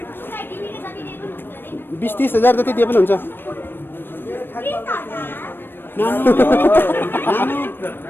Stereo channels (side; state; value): right; late; 0.098 ms